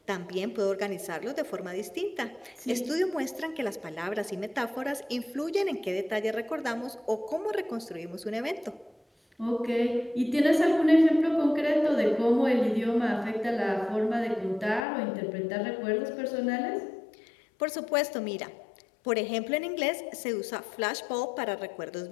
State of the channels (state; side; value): drops out; right; at 14.9 s